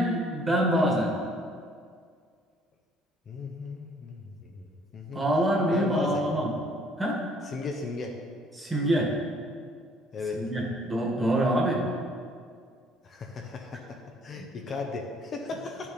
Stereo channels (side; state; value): both; normal; correlation 0.61